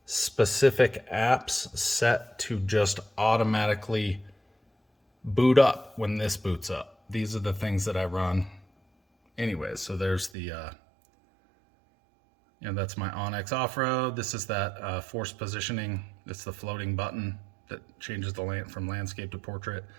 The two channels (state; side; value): drops out; left; at 10.3 s